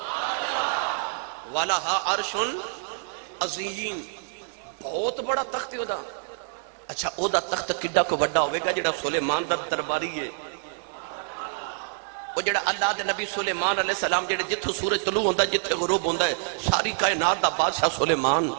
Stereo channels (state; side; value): silent; left; digital silence